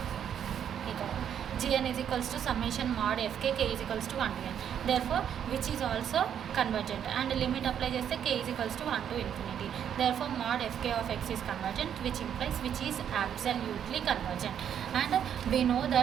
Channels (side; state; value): left; quieter; 9.0 dB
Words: Gn is equals to summation mod fk k is equals to 1 to n. Therefore which is also convergent and limit apply చేస్తే k is equals to 1 to infinity. Therefore mod fk of x is convergent, which implies which is absolutely convergent, and we know